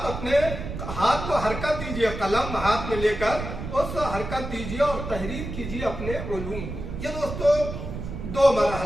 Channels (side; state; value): right; noise; rumble, 7 dB below the sound